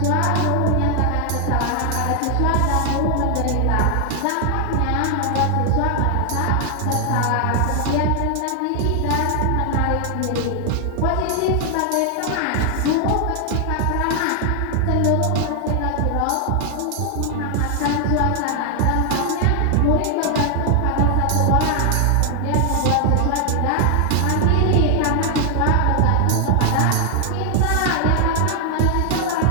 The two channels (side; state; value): both; different; correlation 0.00